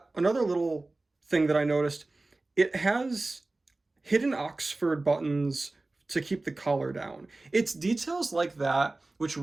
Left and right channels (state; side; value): quieter; left; 3.1 dB